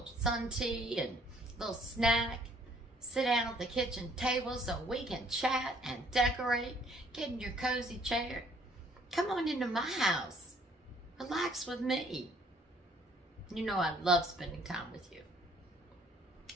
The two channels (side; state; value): both; normal; correlation 0.61